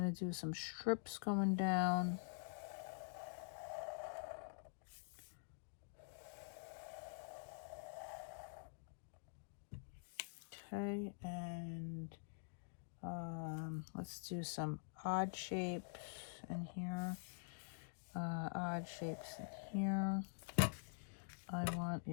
to do some strips going down. Okay, and let's do some odd shapes in here. Odd shapes in here. I want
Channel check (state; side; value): silent; right; digital silence